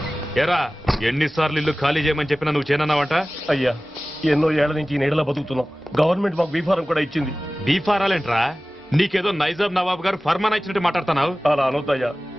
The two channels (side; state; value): both; normal; correlation 0.97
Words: ఏరా, ఎన్నిసార్లు ఇల్లు ఖాళీ చేయమని చెప్పినా నువ్వు చేయనన్నావంట? అయ్యా, ఎన్నో ఏళ్ల నుంచి ఈ నీడలో బతుకుతున్నాం. గవర్నమెంట్ మాకు బీఫారం కూడా ఇచ్చింది. బీఫారాలేంట్రా? నీకేదో నైజాం నవాబ్ గారు ఫర్మాన్ ఇచ్చినట్టు మాట్లాడుతున్నావు. అలా అనొద్దయ్యా.